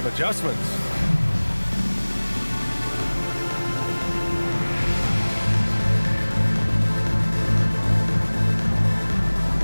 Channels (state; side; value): inverted; both; correlation -1.00